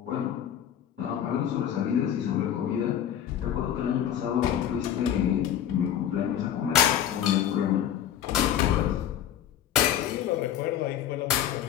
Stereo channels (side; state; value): right; quieter; 10.3 dB